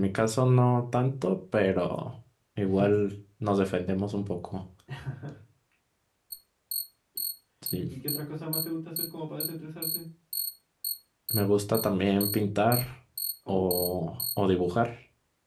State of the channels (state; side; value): identical; both; correlation 1.00